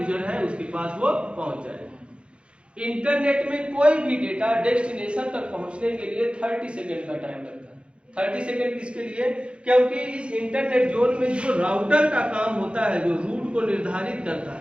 है उसके पास वो पहुंच जाएगा। इंटरनेट में कोई भी डेटा डेस्टिनेशन तक पहुंचने के लिए 30 सेकेंड का टाइम लगता है। 30 सेकेंड किसके लिए, क्योंकि इस इंटरनेट जोन में जो राउटर का काम होता है, जो रूट को निर्धारित करता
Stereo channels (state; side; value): late; left; 0.058 ms